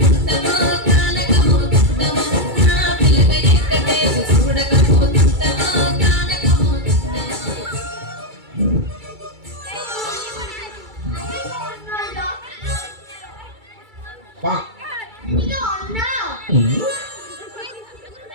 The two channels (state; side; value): late; left; 2.3 ms